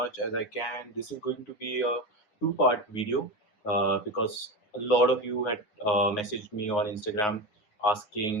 as I can. This is going to be a two-part video because a lot of you had messaged me on Instagram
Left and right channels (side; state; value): right; late; 9.5 ms